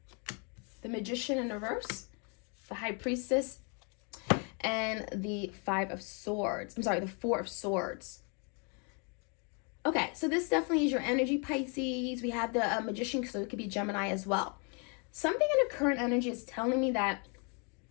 The Magician in reverse, the High Priestess, and the Five of Swords. I'm sorry, the Four of Swords. Okay, so this definitely is your energy, Pisces. We have the Magician, so it could be Gemini as well. Something in the current energy is telling me that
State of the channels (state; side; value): quieter; right; 35.9 dB